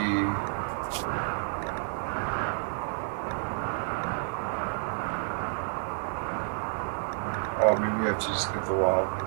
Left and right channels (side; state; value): left; silent; 58 dB below the other